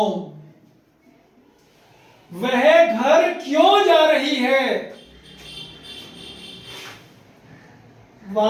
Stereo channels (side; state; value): both; identical; correlation 1.00